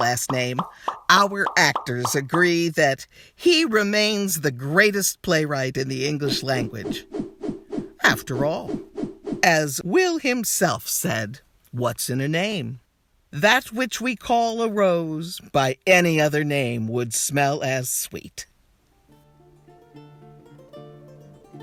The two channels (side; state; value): both; identical; correlation 1.00